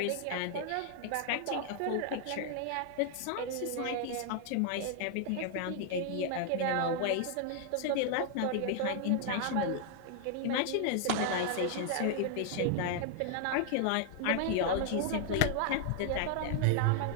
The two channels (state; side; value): different; both; correlation 0.00